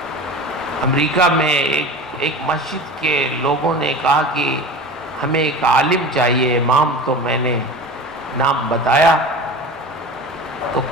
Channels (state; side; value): normal; both; correlation 0.33